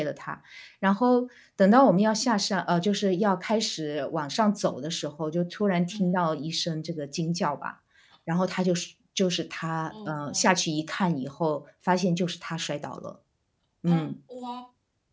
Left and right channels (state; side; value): identical; both; correlation 1.00